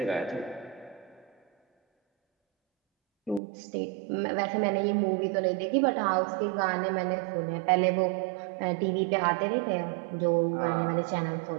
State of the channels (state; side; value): drops out; left; at 3.4 s